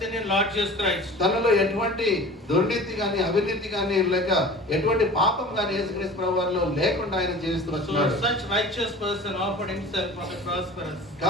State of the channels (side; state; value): both; normal; correlation 0.40